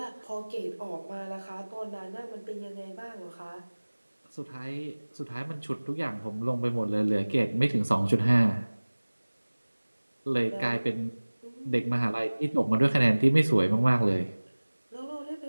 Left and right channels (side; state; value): both; inverted; correlation -1.00